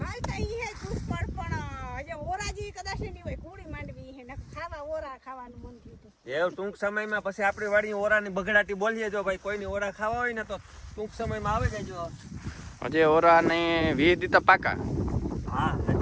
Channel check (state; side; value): identical; both; correlation 1.00